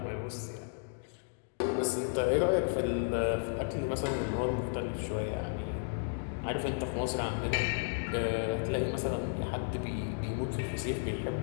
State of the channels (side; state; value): right; silent; digital silence